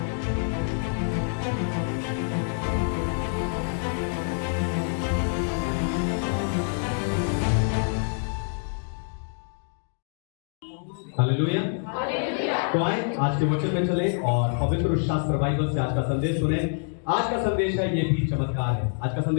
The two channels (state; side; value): silent; right; 61 dB below the other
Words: हालेलुया। तो आए आज के वचन में चले और पवित्र शास्त्र बाइबल से आज का संदेश सुने। आज का संदेश है ये भी चमत्कार है। आज का